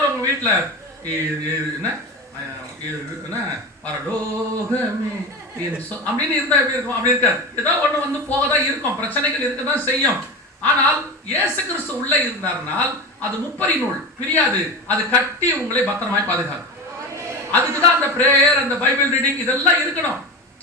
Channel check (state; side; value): normal; both; correlation 0.25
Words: உங்க வீட்டுல என்ன பரலோகமே அப்படின்னு இருந்தா எப்படி இருக்கும்? அப்படி இருக்காது. ஏதோ ஒண்ணு வந்து போகதான் இருக்கும், பிரச்சனைகள் இருக்கதான் செய்யும். ஆனால் இயேசு கிறிஸ்து உள்ள இருந்தார்னால் அது முப்பரி நூல் பிரியாது, அது கட்டி உங்களை பத்திரமாய் பாதுகாக்கும். அதுக்குதான் அந்த பிரேயர், அந்த பைபிள் ரீடிங் இதெல்லாம் இருக்கணும்.